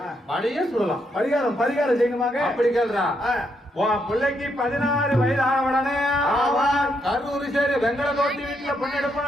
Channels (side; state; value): both; normal; correlation 0.77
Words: பழைய சொல்லலாம். பரிகாரம் செய்யணுமாங்க? அப்படி கேள்றா. உன் பிள்ளைக்கு 16 வயது ஆன உடனே கரூர் சரி வெங்கல தோட்டி வீட்டுல